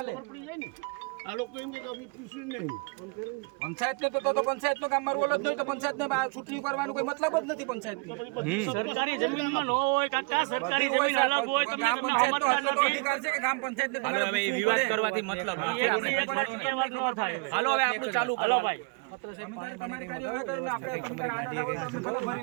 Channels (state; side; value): quieter; left; 31.0 dB